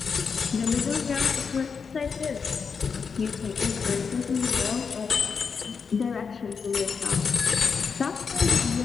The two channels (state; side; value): quieter; right; 5.7 dB